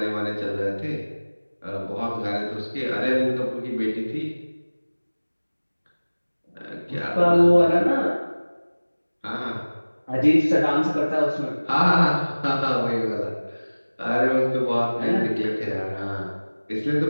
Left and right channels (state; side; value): inverted; both; correlation -1.00